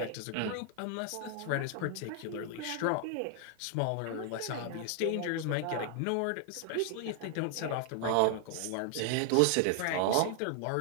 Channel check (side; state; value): both; different; correlation 0.00